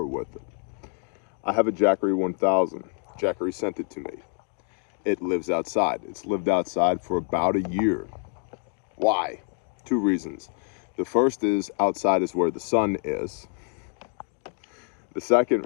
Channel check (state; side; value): quieter; right; 39.5 dB